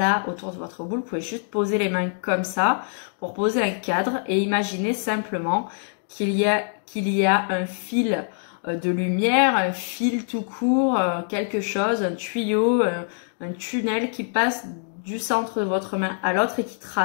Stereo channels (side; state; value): right; silent; digital silence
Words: autour de votre boule. Vous pouvez juste poser les mains comme ça pour poser un cadre et imaginer simplement qu'il y a un fil de lumière, un fil tout court, quelque chose, un tuyau, un tunnel qui passe du centre de votre main à l'autre et qui